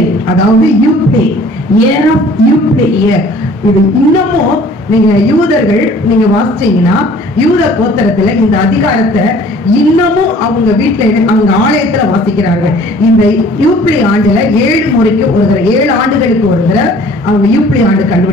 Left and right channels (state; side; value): normal; both; correlation 0.52